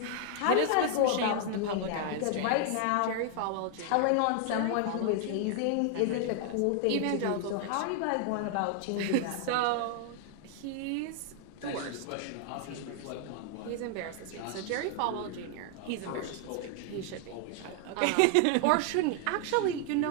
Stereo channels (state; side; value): different; both; correlation 0.00